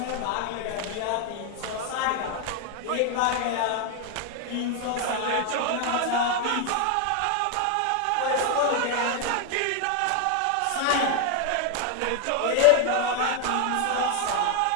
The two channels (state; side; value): different; both; correlation 0.00